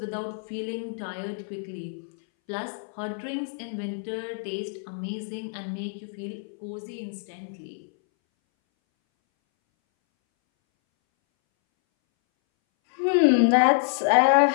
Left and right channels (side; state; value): right; silent; 60 dB below the other